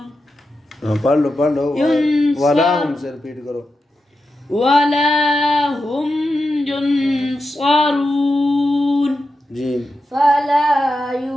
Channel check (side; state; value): both; normal; correlation 0.89